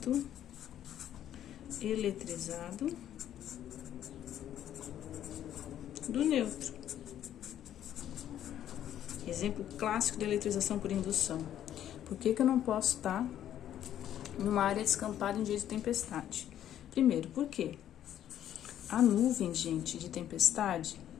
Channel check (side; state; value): right; quieter; 11.1 dB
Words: eletrizado do neutro. Exemplo clássico de eletrização por indução. Por que eu não posso estar numa área descampada em dia de tempestade? Primeiro, por quê? A nuvem, gente, de tempestade,